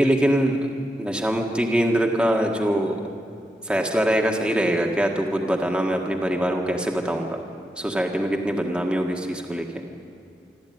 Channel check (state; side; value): normal; both; correlation 0.85